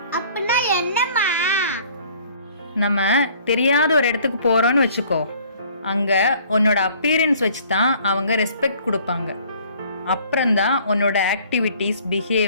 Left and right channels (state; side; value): inverted; both; correlation -0.55